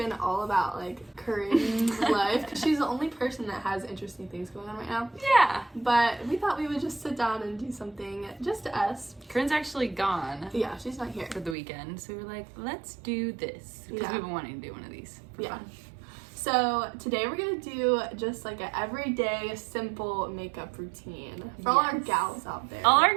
all about like Corinne's life because she's the only person that has interesting things going on right now. Yeah. But we thought we would just sit down and do something just us. Corinne's actually gone. Yeah, she's not here for the weekend. So we were like, let's do this. Because we've been wanting to do one of these for fun. So today we're gonna do just like an everyday simple makeup routine for all our gals out there. All our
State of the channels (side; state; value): left; drops out; at 11.6 s